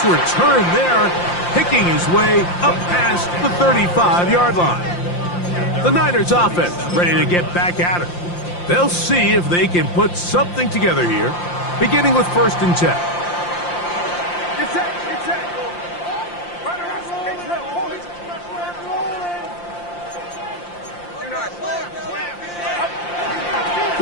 return there, picking his way up past the 35-yard line. The Niners offense ready to get back at it. They'll see if they can put something together here, beginning with 1st and 10.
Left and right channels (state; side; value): late; right; 5.7 ms